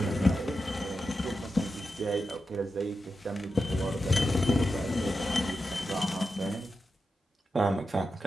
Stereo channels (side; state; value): both; normal; correlation 0.90